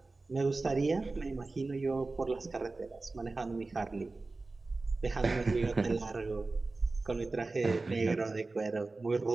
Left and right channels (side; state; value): left; quieter; 3.5 dB